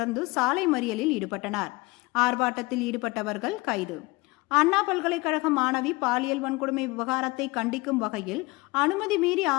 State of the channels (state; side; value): quieter; right; 23.6 dB